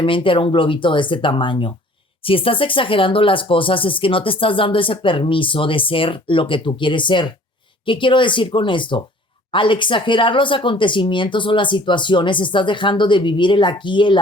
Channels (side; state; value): both; normal; correlation 0.52